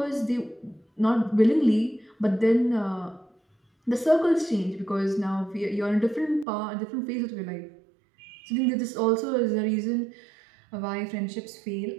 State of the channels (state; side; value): drops out; left; at 6.5 s